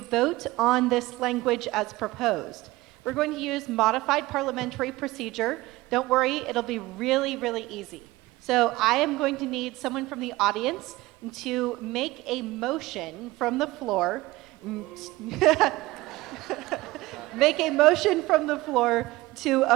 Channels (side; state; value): left; quieter; 19.3 dB